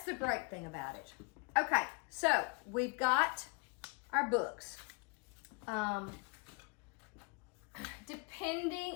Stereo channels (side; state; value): right; quieter; 30.6 dB